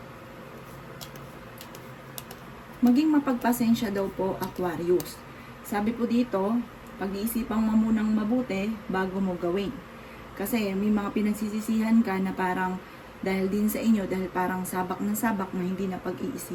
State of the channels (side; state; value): both; identical; correlation 1.00